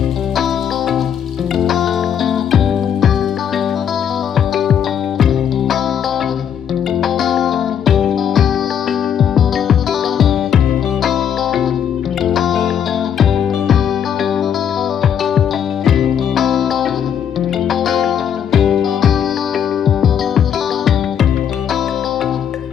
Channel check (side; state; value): right; quieter; 8.6 dB